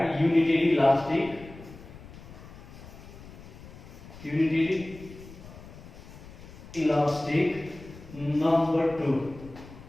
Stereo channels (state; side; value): noise; left; rumble, 17 dB below the sound